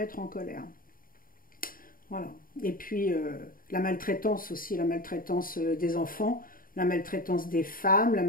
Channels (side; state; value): right; late; 0.41 ms